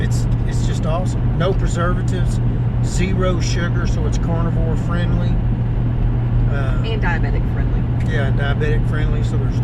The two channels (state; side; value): identical; both; correlation 1.00